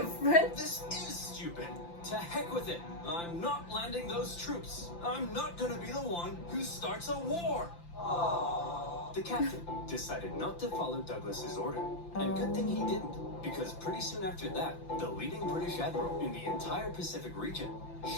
This is stupid. To heck with it. I'm not landing those troops. I'm not gonna be the one who starts a war. The captain decided not to follow Douglas's order. And good thing he didn't, because pretty soon after that, the leading British admiral in the entire Pacific region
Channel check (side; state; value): right; late; 5.9 ms